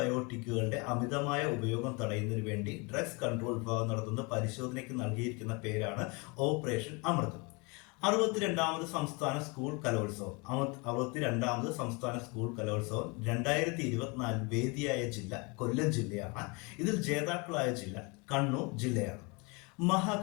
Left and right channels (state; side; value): quieter; right; 29.5 dB